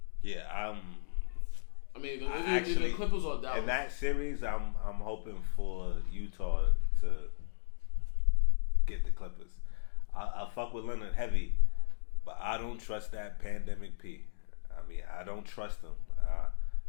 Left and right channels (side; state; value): right; silent; digital silence